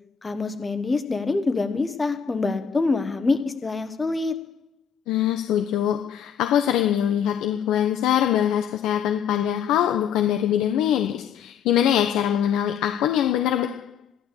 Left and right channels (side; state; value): right; quieter; 7.9 dB